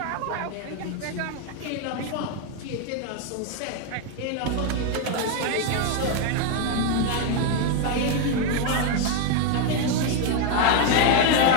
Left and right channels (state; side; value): different; both; correlation 0.01